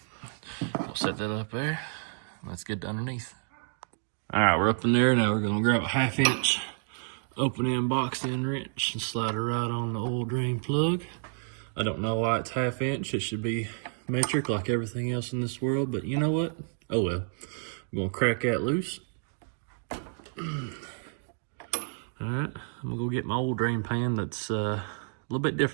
We'll set that up there. Let's get underneath. All right, we're up in there. Now we're gonna grab a 1/2 inch open end box end wrench and slide it right on the oil drain plug. I don't know why it's 1/2 inch. It should be metric like everything else in this world, but you know what? Oh well. I'm gonna crack that loose. All right, I'm gonna go get my oil drain pan that's a little bit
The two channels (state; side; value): silent; left; 58 dB below the other